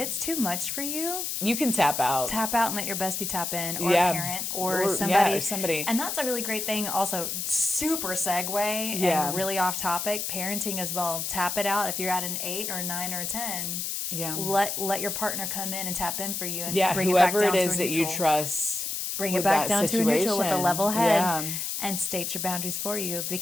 too much for you, you can tap out. tap out and let your bestie tap in, or Yeah. a parent, or Or- somebody. yeah, or somebody. And that's a really great thing. Also, super segue Yeah. and really off topic. Parenting as well. Tap it out if you're at an 8 or 9 or a 10. Yeah. Let your partner come in and tap in for you and Yeah. bring it back Whoever down it to is a that you neutral. trust. Bring it with back that down to a neutral with a situation. level head Yeah. and state your boundaries for you.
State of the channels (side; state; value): left; noise; hiss, 3 dB below the sound